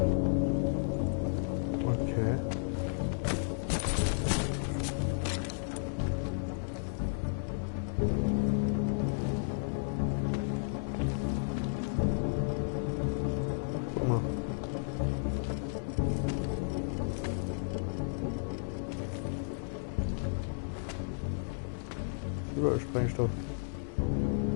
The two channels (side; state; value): right; silent; digital silence